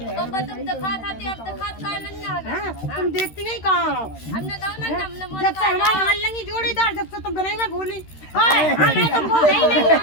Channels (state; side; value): late; right; 13 ms